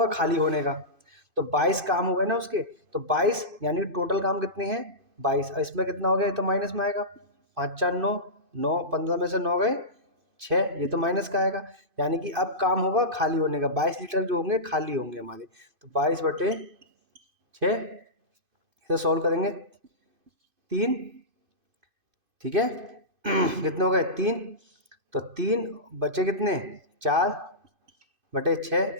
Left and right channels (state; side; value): late; left; 2.5 ms